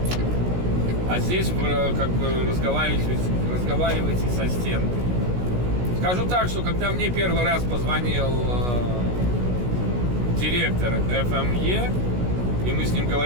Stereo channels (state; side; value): late; left; 16 ms